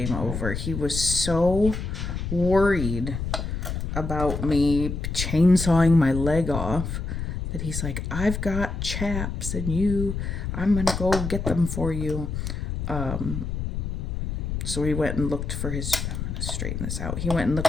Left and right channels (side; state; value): left; noise; rumble, 3 dB below the sound